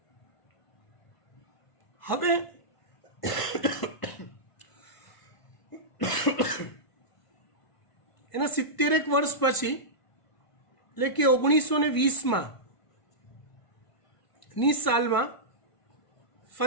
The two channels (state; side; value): late; right; 1.5 ms